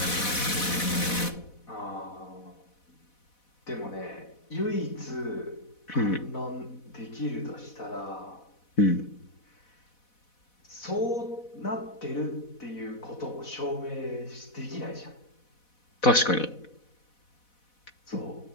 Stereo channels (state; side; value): late; right; 4.1 ms